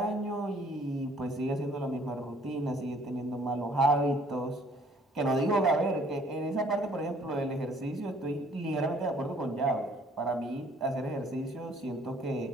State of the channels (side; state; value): both; normal; correlation 0.59